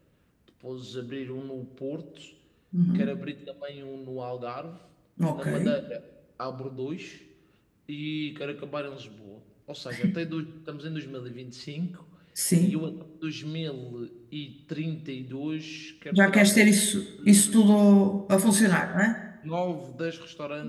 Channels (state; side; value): identical; both; correlation 1.00